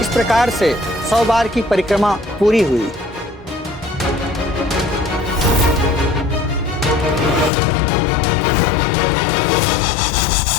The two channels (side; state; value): right; drops out; at 7.5 s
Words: इस प्रकार से 100 बार की परिक्रमा पूरी हुई।